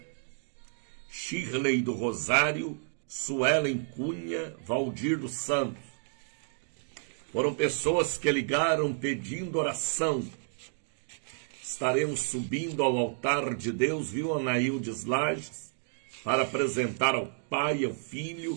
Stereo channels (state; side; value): silent; left; digital silence